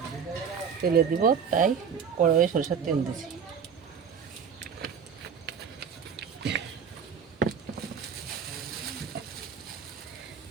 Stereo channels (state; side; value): quieter; left; 7.0 dB